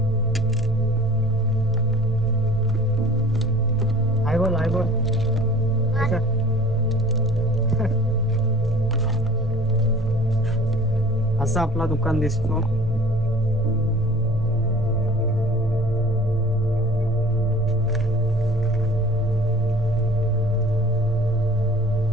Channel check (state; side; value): normal; both; correlation 0.46